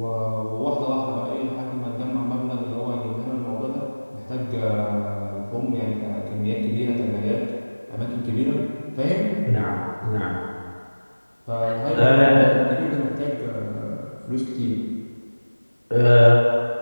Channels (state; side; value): inverted; both; correlation -1.00